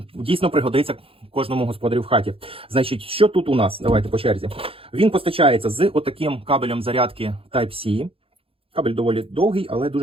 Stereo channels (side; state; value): left; late; 0.27 ms